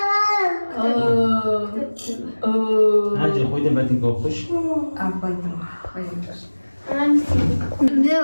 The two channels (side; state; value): both; inverted; correlation -1.00